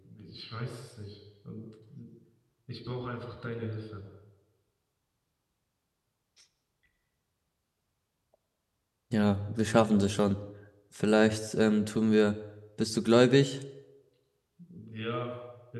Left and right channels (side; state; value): both; identical; correlation 1.00